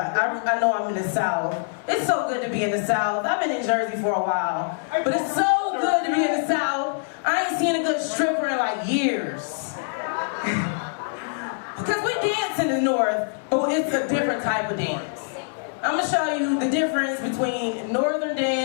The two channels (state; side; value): silent; right; 62 dB below the other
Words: I know I'm in the South. It's so good to be in the South. I've been in Jersey for a while, but it's so good to be in the South. I ain't seen a good stripper in like years. Because we dance in the North, but it's a different type of dance. I'm gonna show you the difference between Northern